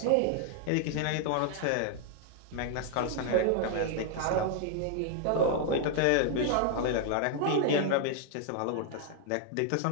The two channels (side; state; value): both; different; correlation 0.00